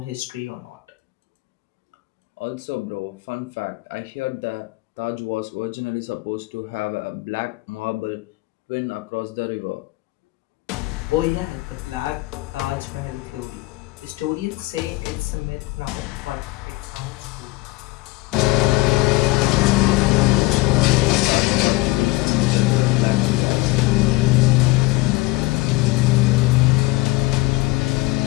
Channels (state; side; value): quieter; right; 21.0 dB